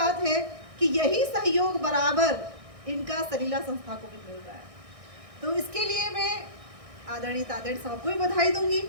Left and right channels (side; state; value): left; late; 1.6 ms